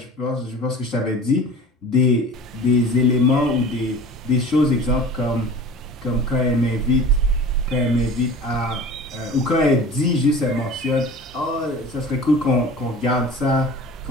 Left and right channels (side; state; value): both; normal; correlation 0.40